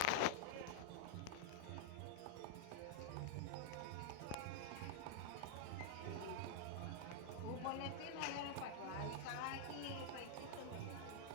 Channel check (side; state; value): both; different; correlation -0.02